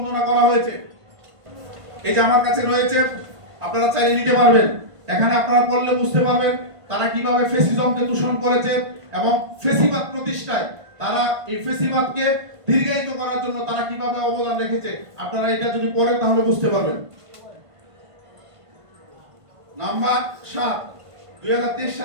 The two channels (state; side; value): late; left; 1.5 ms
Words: করা হয়েছে। এই যে আমার কাছে রয়েছে, আপনারা চাইলে নিতে পারবেন। এখানে আপনারা পড়লে বুঝতে পারবেন তারা কিভাবে ফ্যাসিজমকে দূষণ করেছে এবং ফ্যাসিবাদ প্রতিষ্ঠায় তারা এই ফ্যাসিবাদকে দীর্ঘায়িত করার জন্য তারা কিভাবে অবদান রেখেছে। আপনারা এটা যদি পড়েন তাহলে বুঝতে পারবেন। নাম্বার 7, 2023